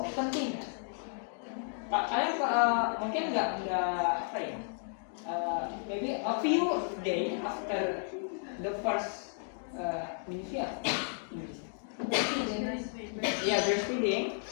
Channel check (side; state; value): right; silent; 56 dB below the other